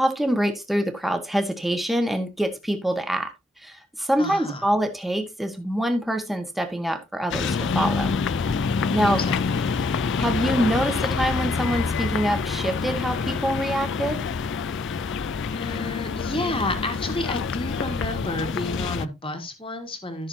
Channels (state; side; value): normal; both; correlation 0.73